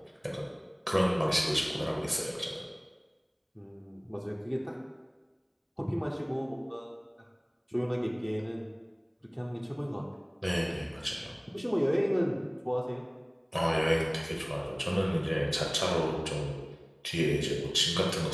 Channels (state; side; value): identical; both; correlation 1.00